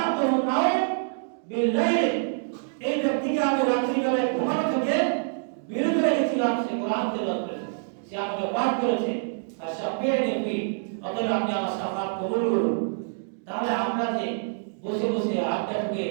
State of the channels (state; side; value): silent; left; digital silence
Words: নাও বিল-লাইল, এই ব্যক্তিকে আমি রাত্রি বেলায় ঘুমানো থেকে বিরত রেখেছিলাম, সে কোরআন তেলাওয়াত করেছে, সে আমাকে পাঠ করেছে, আর শাফিয়ানি ফি, অতএব আপনি আমার শাফাত কবুল করুন। তাহলে আমরা যে বসে বসে আড্ডা ঢুকে